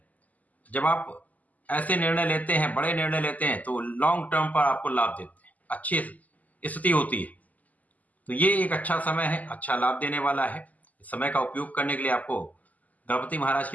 जब आप ऐसे निर्णय लेते हैं, बड़े निर्णय लेते हैं, तो लॉन्ग टर्म पर आपको लाभ देते हैं, अच्छी स्थिति होती है। तो ये एक अच्छा समय है, अच्छा लाभ देने वाला है। इस समय का उपयोग करने के लिए आपको गणपति महाराज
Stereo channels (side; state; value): right; late; 0.078 ms